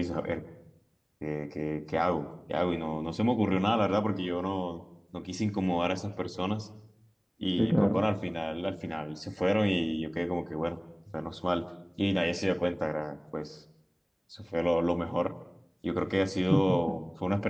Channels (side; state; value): both; identical; correlation 1.00